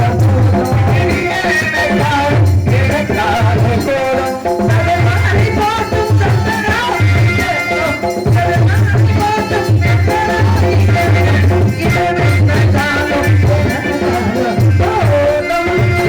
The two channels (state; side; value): identical; both; correlation 1.00